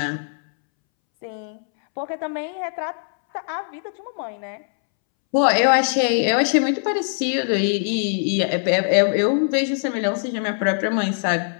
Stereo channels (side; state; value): right; silent; 64 dB below the other